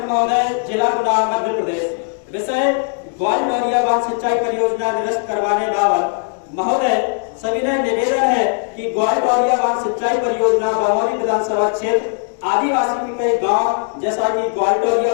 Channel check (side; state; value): right; silent; 67 dB below the other